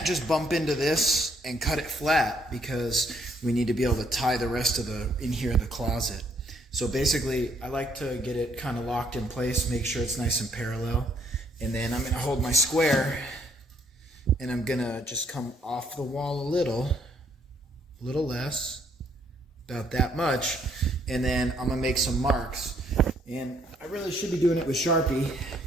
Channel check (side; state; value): both; normal; correlation 0.68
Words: just bump into this and cut it flat because we need to be able to tie the rest of the in here in the closet. So basically I like to get it kind of locked in place, make sure it's nice and parallel, and then I'm going to hold my square and I'm going to just come off the wall a little less, about that much, and then I'm going to make some marks. And I really should be doing it with Sharpie,